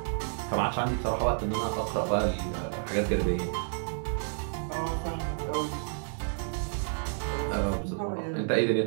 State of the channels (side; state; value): left; silent; 58 dB below the other